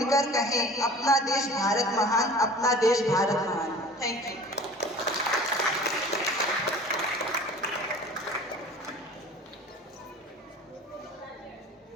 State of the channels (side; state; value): both; normal; correlation 0.43